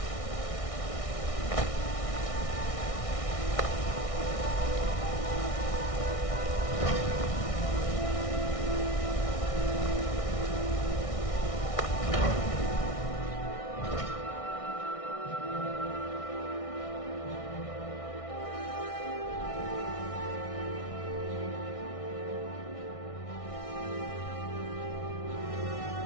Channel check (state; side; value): late; right; 1.6 ms